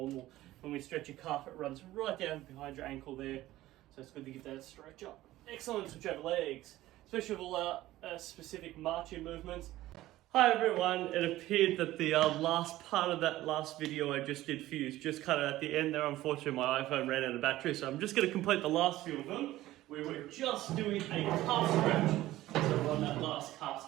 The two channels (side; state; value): left; quieter; 15.8 dB